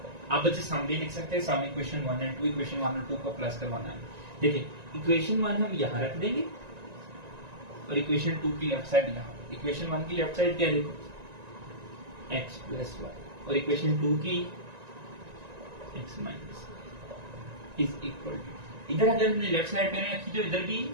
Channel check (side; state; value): left; late; 1.9 ms